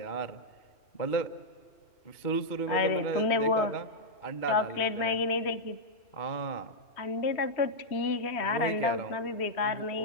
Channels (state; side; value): late; right; 2.2 ms